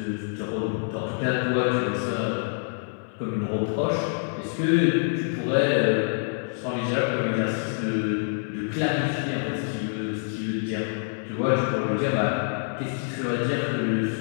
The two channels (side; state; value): right; silent; 61 dB below the other